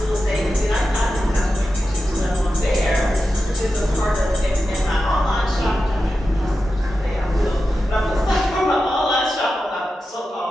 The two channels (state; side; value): normal; both; correlation 0.91